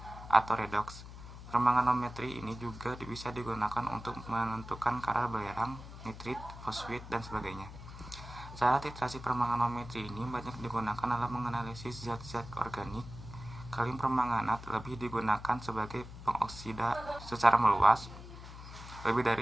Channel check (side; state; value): left; noise; hum, 13 dB below the sound